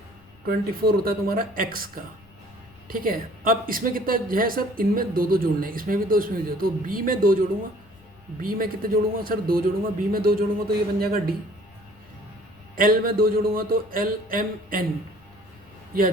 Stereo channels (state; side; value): noise; left; rumble, 27 dB below the sound